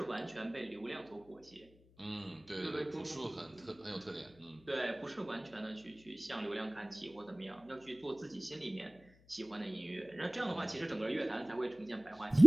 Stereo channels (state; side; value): noise; left; hum, 26 dB below the sound